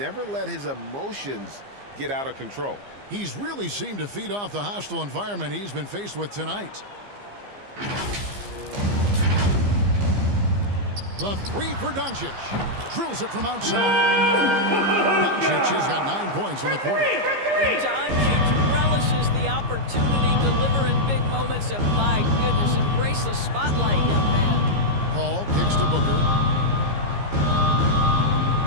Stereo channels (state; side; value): late; left; 15 ms